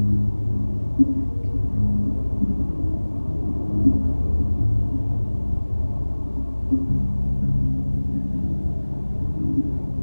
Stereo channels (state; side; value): inverted; both; correlation -1.00